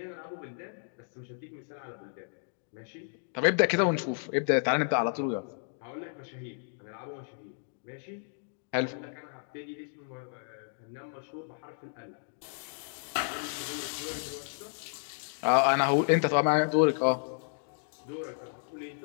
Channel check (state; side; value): silent; right; digital silence